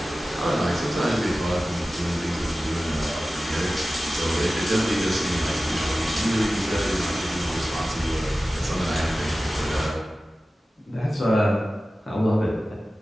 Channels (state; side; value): normal; both; correlation 0.95